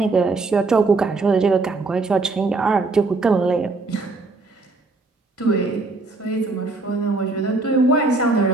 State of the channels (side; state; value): left; quieter; 3.6 dB